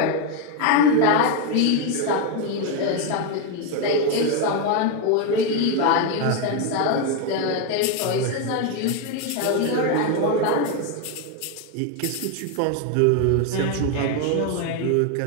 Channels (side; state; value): both; different; correlation 0.02